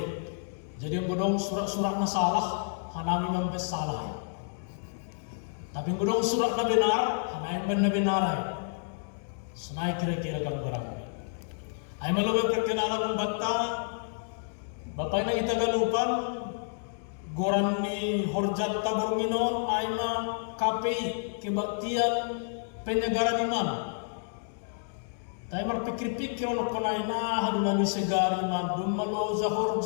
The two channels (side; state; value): right; silent; digital silence